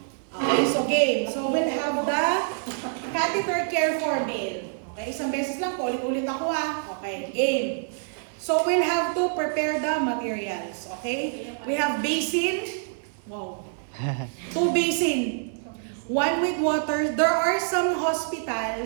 Okay, so game. So we'll have the catheter care for male. Okay, isang beses lang, ulit-ulit ako Okay, game. So we'll have to prepare the materials. Okay, we have basin. Wow. 2 basin. 1 with water. There are some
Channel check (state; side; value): silent; left; 61 dB below the other